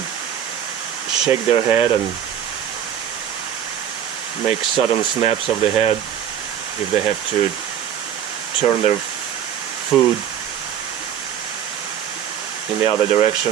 shake their head and make sudden snaps of the head if they have to turn their food in the other direction,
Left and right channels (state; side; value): quieter; left; 9.5 dB